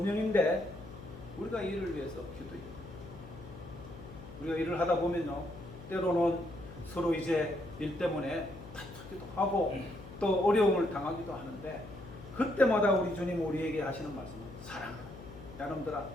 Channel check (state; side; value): noise; left; hum, 15 dB below the sound